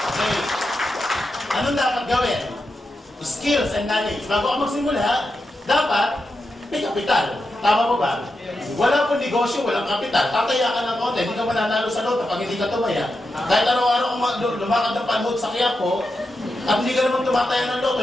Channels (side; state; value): both; normal; correlation 0.88